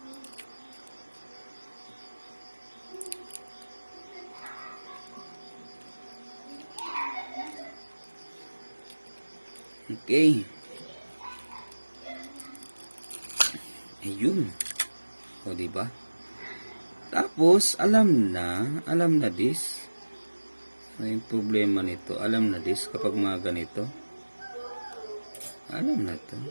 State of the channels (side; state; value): both; inverted; correlation -1.00